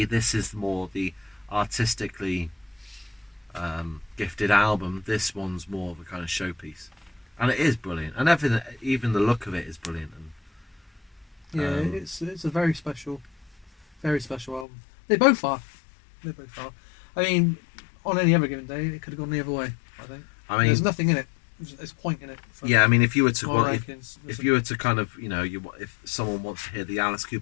this is more the artistically gifted album. This one's more of a kind of showpiece, and it is brilliant. And everything, even the look of it, is brilliant. And yeah, it's a very special album. They both are. I mean, on any other given day, it could have gone the other way. I think. There's nothing in it. There's a point in it. Yeah, I mean, if you were to if you were to kind of if someone wants to hear the Alice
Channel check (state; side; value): drops out; right; at 14.7 s